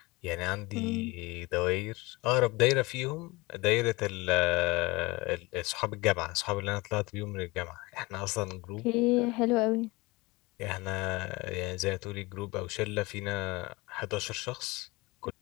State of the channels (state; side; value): quieter; right; 23.2 dB